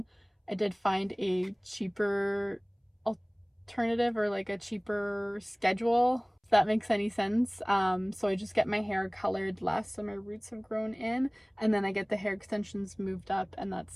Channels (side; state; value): both; identical; correlation 1.00